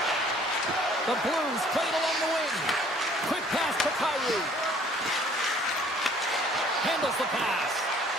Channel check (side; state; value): both; normal; correlation 0.56